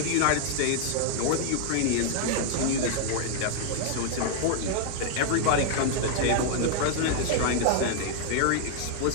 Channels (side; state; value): both; different; correlation 0.00